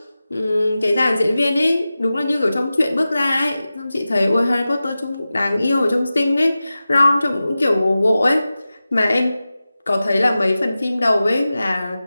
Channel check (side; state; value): both; inverted; correlation -0.95